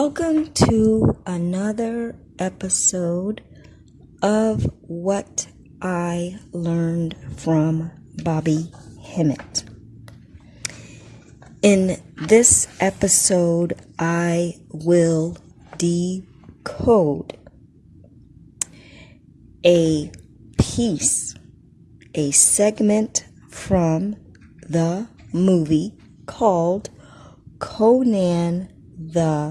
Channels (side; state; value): both; identical; correlation 1.00